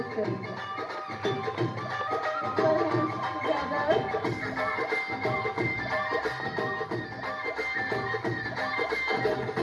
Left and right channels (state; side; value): identical; both; correlation 1.00